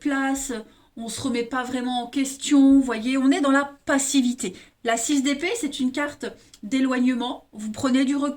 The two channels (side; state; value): both; identical; correlation 1.00